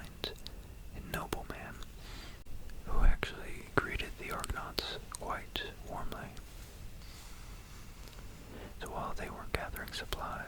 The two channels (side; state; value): both; identical; correlation 1.00